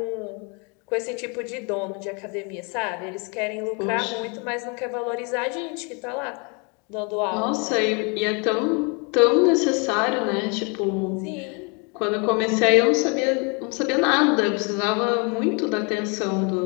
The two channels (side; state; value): right; quieter; 33.6 dB